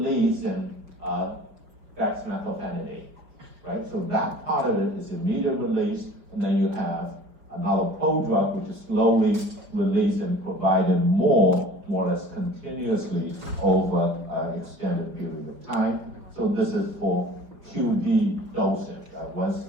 in dexmethylphenidate, right? So that part of it is immediate release, and then you have another prodrug which is slowly released and provided more or less continuously over an extended period of time. So this is for QD dosing, once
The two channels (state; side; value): late; left; 4.9 ms